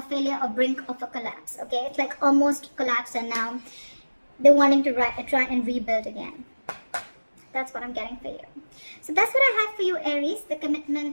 failure or brink of a collapse, okay? It's like almost collapsed, and now they're wanting to try and rebuild again. That's what I'm getting for you. So that's what I have for you, Aries. The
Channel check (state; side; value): inverted; both; correlation -1.00